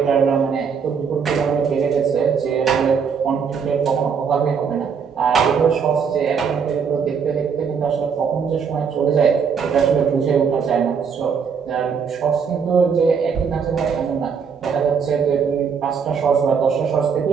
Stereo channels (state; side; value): quieter; left; 6.4 dB